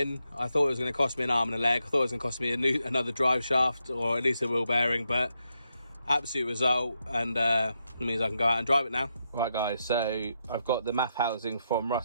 I thought it was going to cost me an arm and a leg. I thought it was going to cost me another drive shaft, or at least a wheel bearing, but absolute result, and it means I can go out and drive it now. Right, guys, so I've got the MAF housing from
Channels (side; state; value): both; inverted; correlation -0.82